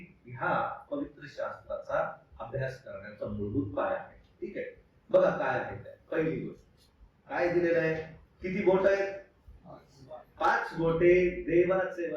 ह्या पवित्र शास्त्राचा अभ्यास करण्याचा मूलभूत पाया आहे. ठीक आहे, बघा काय आहे ते. पहिली गोष्ट काय दिलेलं आहे, किती बोट आहेत? 5 बोटे देवाचे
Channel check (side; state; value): both; identical; correlation 1.00